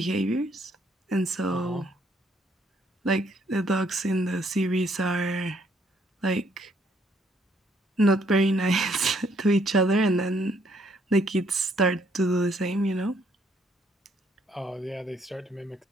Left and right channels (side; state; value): both; normal; correlation 0.68